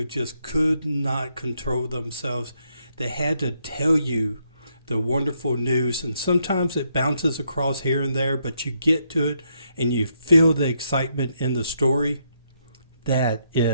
just could not control themselves? They had to tell you the wonderful news, and sometimes it bounces across here and there, but you get to it and you feel the excitement in the story. That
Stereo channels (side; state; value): both; inverted; correlation -0.76